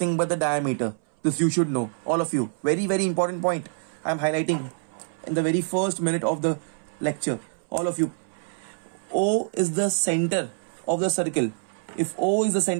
but the diameter. This you should know, all of you. Very, very important point I'm highlighting in the very first minute of the lecture. All of you. O is the center of the circle. If O is the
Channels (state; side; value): silent; left; 61 dB below the other